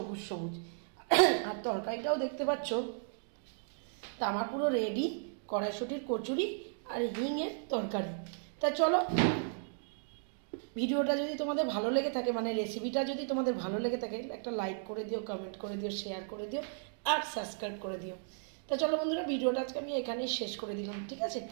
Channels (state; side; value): silent; left; digital silence